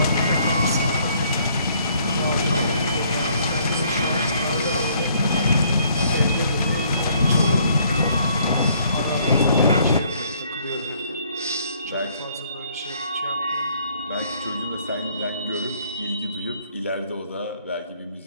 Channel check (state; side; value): inverted; both; correlation -0.64